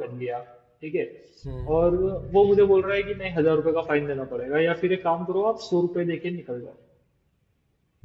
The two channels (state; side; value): identical; both; correlation 1.00